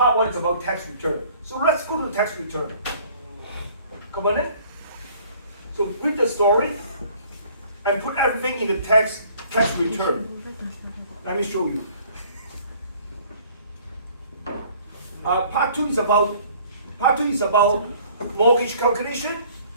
1 is about tax return. So let's go to tax return. Come on in. So read the story and put everything in the tax return. Let me show you. Part 2 is about mortgage calculation.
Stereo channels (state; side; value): inverted; both; correlation -0.54